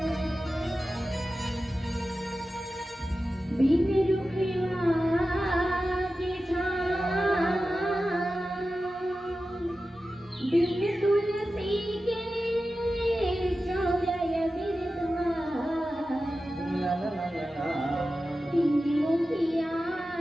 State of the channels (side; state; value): both; normal; correlation 0.93